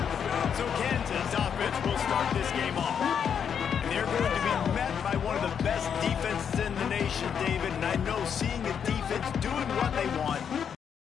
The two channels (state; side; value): quieter; right; 7.6 dB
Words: So Kansas offense will start this game off. And they're going to be met by one of the best defenses in the nation, David. And I know seeing a defense doing what they want,